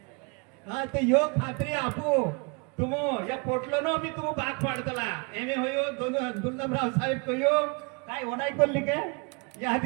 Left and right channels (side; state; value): left; quieter; 32.6 dB